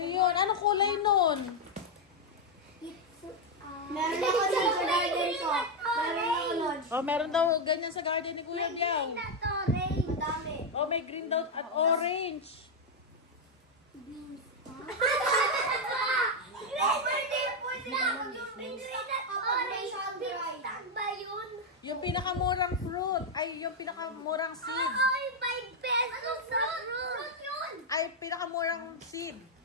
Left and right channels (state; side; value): normal; both; correlation 0.02